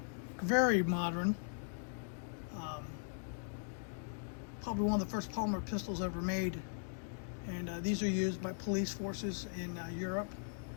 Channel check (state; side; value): silent; right; digital silence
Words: very modern, probably one of the first polymer pistols ever made. And these are used by police forces in Europe